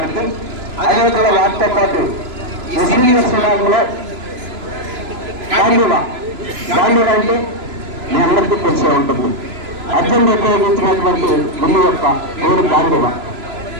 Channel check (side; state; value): left; late; 3.0 ms